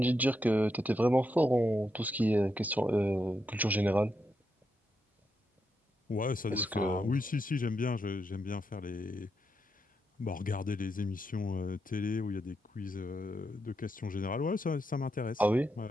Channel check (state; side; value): normal; both; correlation 0.83